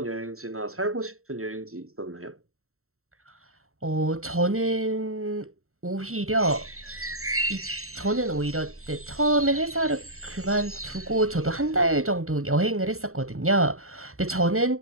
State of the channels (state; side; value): late; left; 0.63 ms